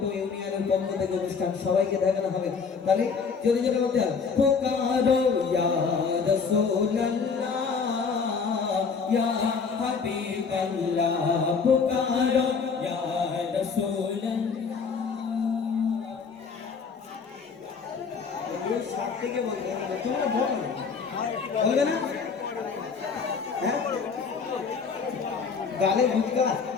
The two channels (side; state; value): right; quieter; 5.5 dB